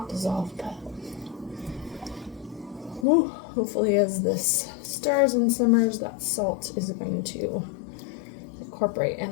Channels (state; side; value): drops out; right; at 3.1 s